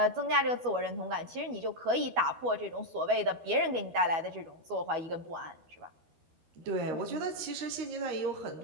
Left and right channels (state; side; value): late; left; 12 ms